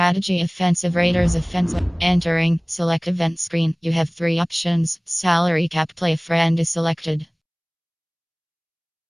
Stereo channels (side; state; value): both; identical; correlation 1.00